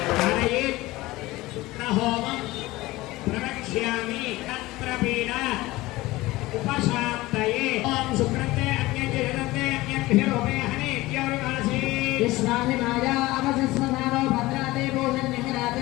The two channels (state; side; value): quieter; right; 19.2 dB